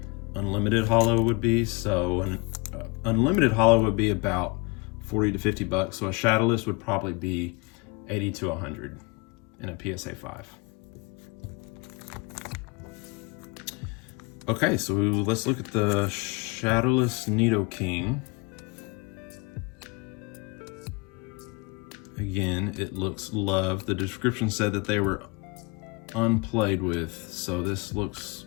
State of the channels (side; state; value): right; quieter; 28.3 dB